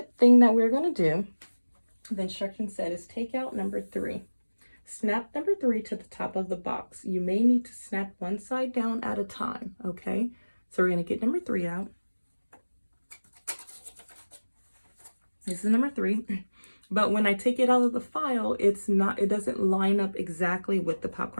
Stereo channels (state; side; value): inverted; both; correlation -1.00